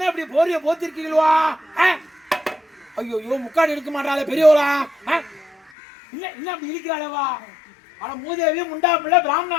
இப்படி போரிய போத்திருக்கீங்களா? ஐயோ முக்காடு எடுக்க மாட்டாளே பெரியவளா? என்ன அப்படி இருக்கிறாளவா? ஆனா மூதேவி முண்டா பிள்ளை பிராமணா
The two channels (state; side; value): drops out; right; at 5.7 s